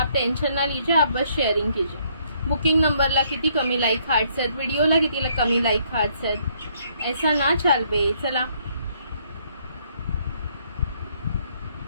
टेंशन ना लीजिए, आप बस शेयरिंग कीजिए. बुकिंग नंबरला किती कमी लाईक हार्ट्स आहेत, व्हिडिओला किती कमी लाईक हार्ट्स आहेत. ऐसा ना चाल बे. चला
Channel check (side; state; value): both; inverted; correlation -0.67